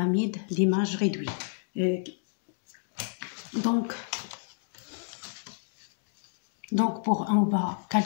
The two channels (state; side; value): silent; right; digital silence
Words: d'image réduite. Donc on va